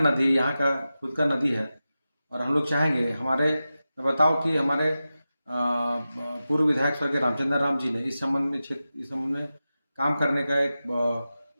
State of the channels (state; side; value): inverted; both; correlation -0.93